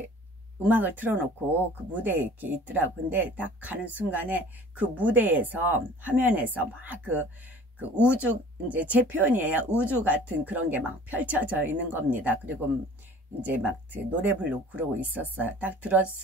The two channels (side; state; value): both; normal; correlation 0.47